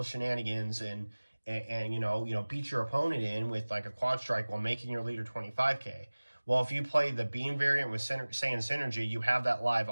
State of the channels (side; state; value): both; inverted; correlation -1.00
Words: shenanigans and beat your opponent in with a quad strike while making your leader 25k. Well, if you play the beam variant with Saiyan Synergy, you have that live